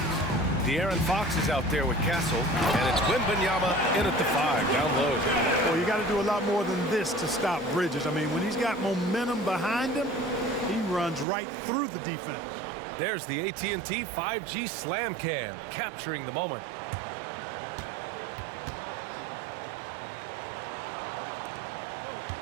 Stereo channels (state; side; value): drops out; left; at 11.2 s